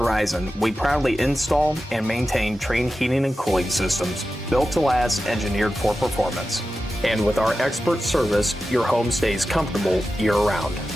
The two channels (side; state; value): both; normal; correlation 0.93